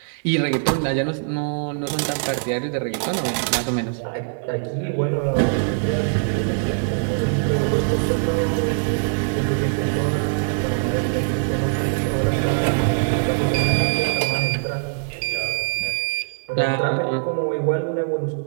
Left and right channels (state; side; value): silent; left; digital silence